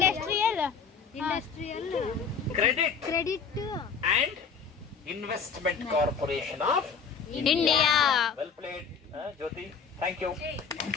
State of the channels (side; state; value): right; quieter; 6.0 dB